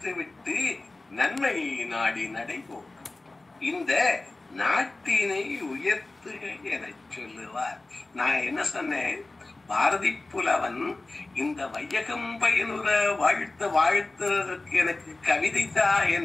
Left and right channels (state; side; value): quieter; right; 3.1 dB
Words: விட்டு நன்மையை நாடி நடைபோம். இந்த நாட்டினை உயர்த்துக என சொல்லுவார். நான் என்ன சொன்னேன்? பாரதி புலவன் இந்த வையகம் பயனுற வாழ்த்துறதற்கு எனக்கு கவிதை தான்,